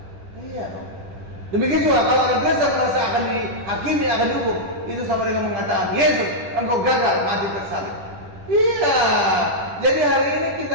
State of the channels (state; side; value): late; left; 10 ms